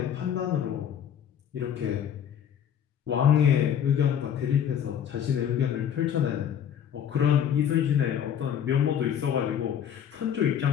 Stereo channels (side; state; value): right; quieter; 9.0 dB